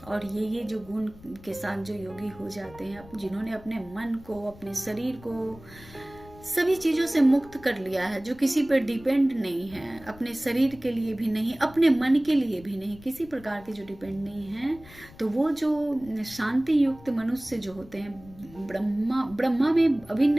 और ये जो गुण के साथ जो योगी हो जाते हैं, जिन्होंने अपने मन को, अपने शरीर को सभी चीजों से मुक्त कर लिया है, जो किसी पर डिपेंड नहीं है, अपने शरीर के लिए भी नहीं, अपने मन के लिए भी नहीं, किसी प्रकार के जो डिपेंड नहीं है, तो वो जो शांति युक्त मनुष्य जो होते हैं ब्रह्मा में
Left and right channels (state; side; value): noise; left; rumble, 21 dB below the sound